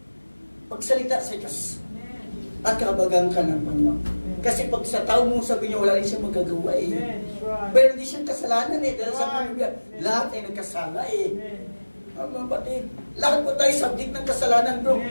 magsalita sa Diyos. At kabagang ka ng Panginoon. Kasi pag sa tao mo sabi niya, wala rin siya magagawa eh. Amen. That's right. Pero hindi siyang kasalanan eh. Dahil sa Right. Biblia, lahat ay nagkasala eh. Amen. Mga batid, lahat po tayo subject ng kasalanan, bro.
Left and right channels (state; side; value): inverted; both; correlation -1.00